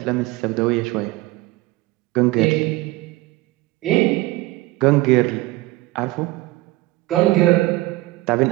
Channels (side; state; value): left; quieter; 19.5 dB